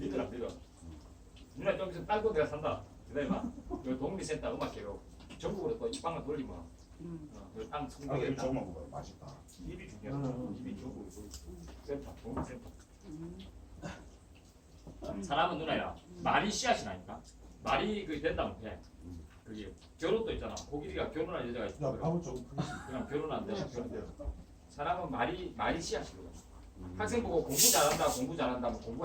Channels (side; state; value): both; identical; correlation 1.00